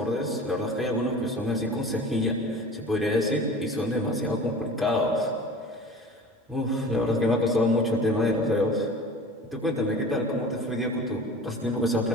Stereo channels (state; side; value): normal; both; correlation 0.39